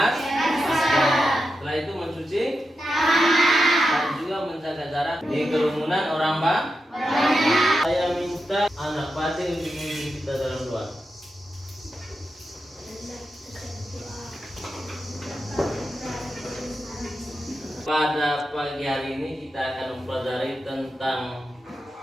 Setelah itu mencuci dan juga menjaga jarak di kerumunan orang banyak. Saya minta anak Pati untuk memimpin kita dalam doa. Pada pagi hari ini kita akan mempelajari tentang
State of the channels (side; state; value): both; normal; correlation 0.88